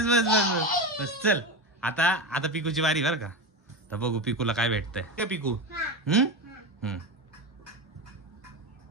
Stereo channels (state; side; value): normal; both; correlation 0.20